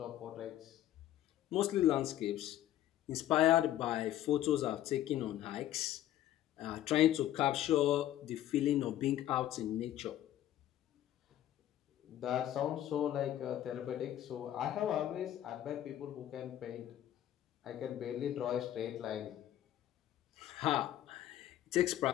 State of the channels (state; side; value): quieter; right; 12.6 dB